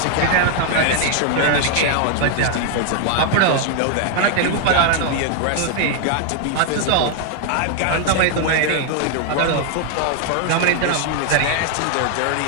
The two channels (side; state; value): both; different; correlation 0.00